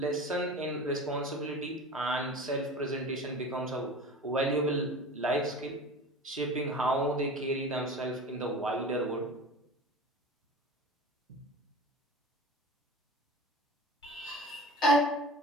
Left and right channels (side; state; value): both; normal; correlation 0.36